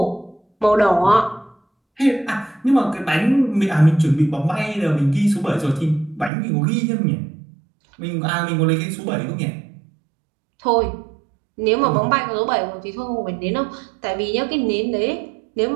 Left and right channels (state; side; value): drops out; left; at 6.3 s